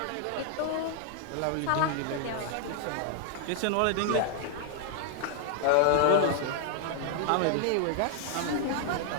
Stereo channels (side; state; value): both; different; correlation 0.00